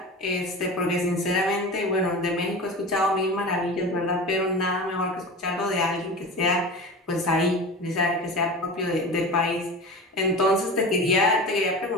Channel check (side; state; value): both; normal; correlation 0.32